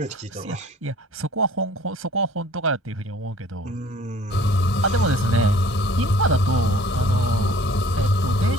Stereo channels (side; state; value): both; normal; correlation 0.51